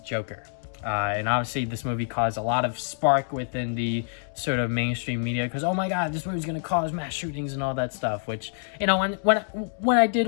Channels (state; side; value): silent; right; digital silence